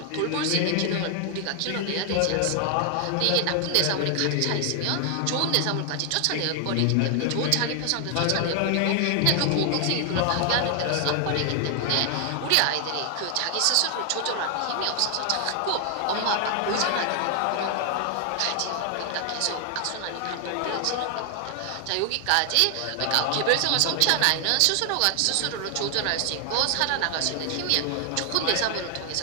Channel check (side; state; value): both; different; correlation 0.00